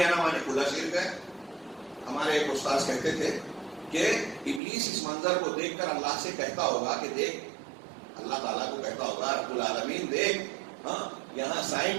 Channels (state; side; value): drops out; left; at 4.6 s